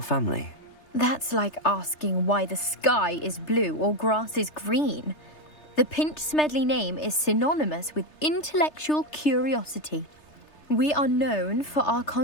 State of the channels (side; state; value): right; late; 3.3 ms